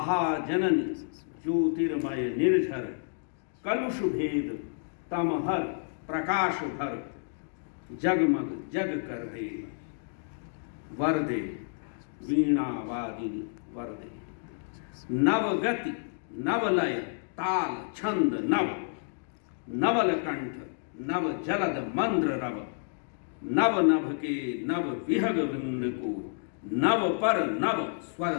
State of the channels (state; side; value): silent; right; digital silence